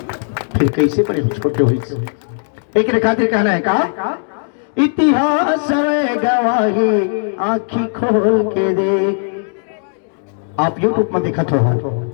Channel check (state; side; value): silent; right; digital silence